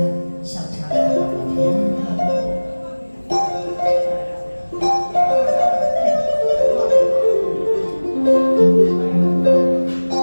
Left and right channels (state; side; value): inverted; both; correlation -1.00